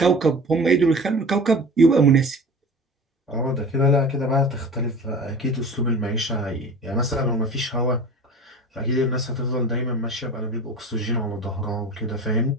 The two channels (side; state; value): both; normal; correlation 0.37